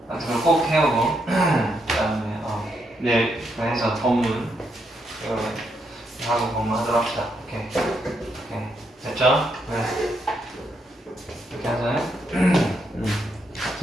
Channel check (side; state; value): both; normal; correlation 0.78